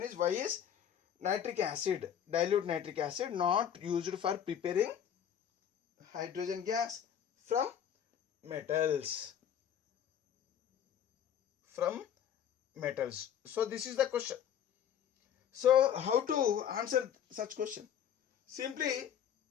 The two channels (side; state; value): right; quieter; 9.2 dB